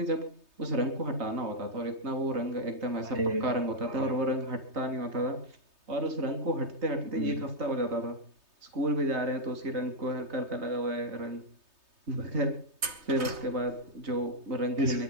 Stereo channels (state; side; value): late; left; 3.2 ms